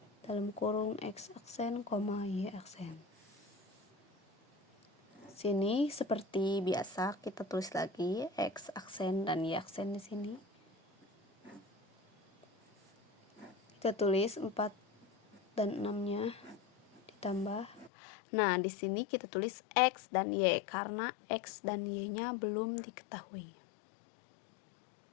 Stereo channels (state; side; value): drops out; right; at 17.9 s